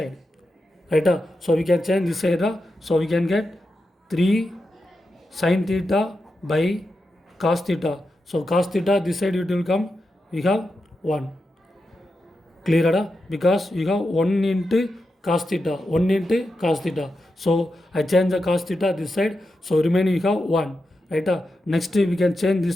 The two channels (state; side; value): normal; both; correlation 0.88